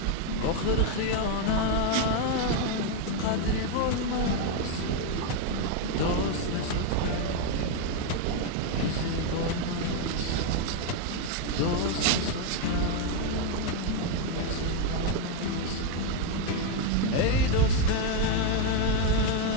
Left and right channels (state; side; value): different; both; correlation 0.01